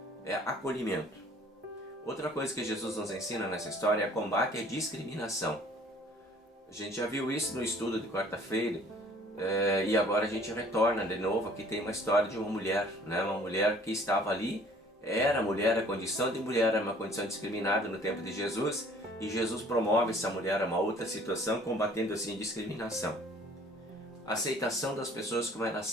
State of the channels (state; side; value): normal; both; correlation 0.54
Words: é acolhimento. Outra coisa que Jesus nos ensina nessa história é combate à discriminação. A gente já viu isso no estudo de quarta-feira, e agora a gente retorna de novo. Aqui tem uma história de uma mulher, né? Uma mulher que estava ali, era mulher, a condição de mulher era uma condição discriminada no tempo de Jesus, e Jesus promove essa mulher a uma outra situação, combatendo assim a discriminação. A aceitação das pessoas como elas